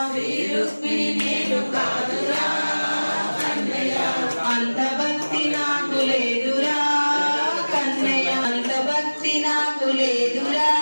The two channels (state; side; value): inverted; both; correlation -1.00